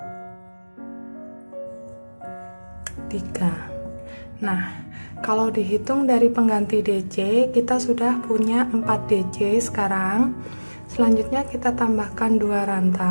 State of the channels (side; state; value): both; inverted; correlation -1.00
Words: 3. Nah, kalau dihitung dari pengganti DC, kita sudah punya 4 DC sekarang. Selanjutnya kita tambahkan 2